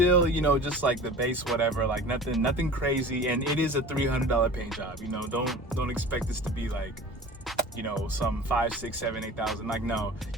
you know, just like the base whatever, like nothing crazy, and it is a $300 paint job. You know, don't expect this to be like, you know, some 5, 6, 7, 8,000. Like, no,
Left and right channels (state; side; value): normal; both; correlation 0.39